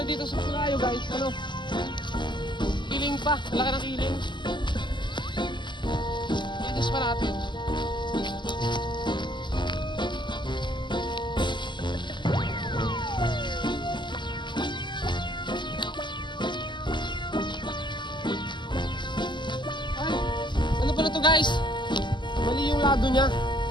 dito sa Pulayo guys, kiling pa, laki ng kiling. Itis pa natin. guys, mali yung lado niya.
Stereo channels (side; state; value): right; late; 0.22 ms